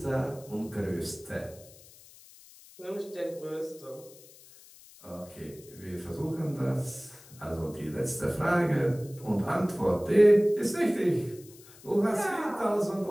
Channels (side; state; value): left; noise; hiss, 22 dB below the sound